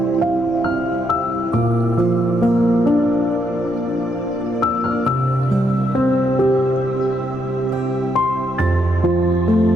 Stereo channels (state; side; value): normal; both; correlation 0.77